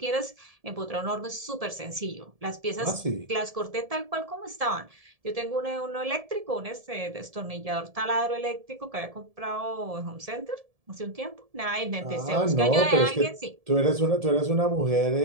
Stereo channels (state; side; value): late; left; 1.7 ms